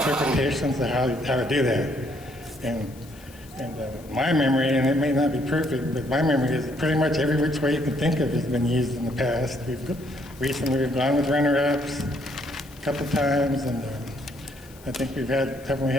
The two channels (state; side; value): noise; left; hiss, 24 dB below the sound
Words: of how to do that. And my memory, and it may not be perfect, but my memory is pretty much every which way you can think of has been used in the past. Recently we've gone with runner-ups a couple times, and I think haven't we